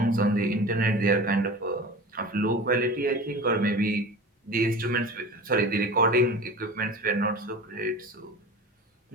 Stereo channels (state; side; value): normal; both; correlation 0.34